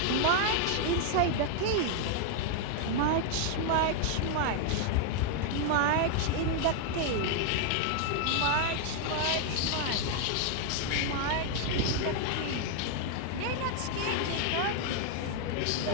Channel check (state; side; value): different; both; correlation 0.00